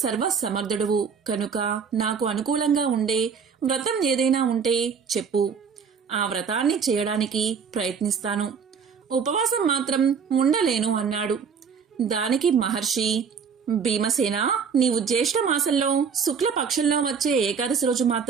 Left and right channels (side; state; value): left; quieter; 6.4 dB